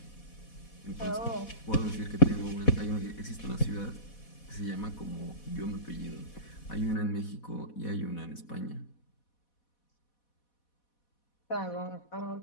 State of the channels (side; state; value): right; late; 4.1 ms